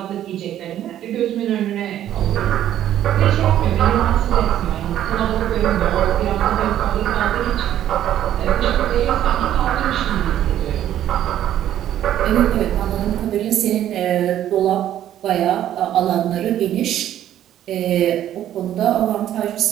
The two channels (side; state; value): left; quieter; 11.6 dB